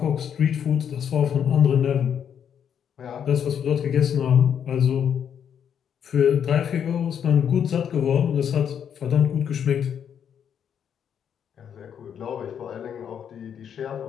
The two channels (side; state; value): right; quieter; 8.4 dB